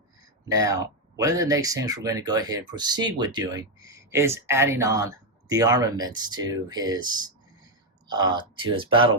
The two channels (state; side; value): normal; both; correlation 0.04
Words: Now, one of the next things we're going to go ahead and proceed with doing is adding on the armaments to his battle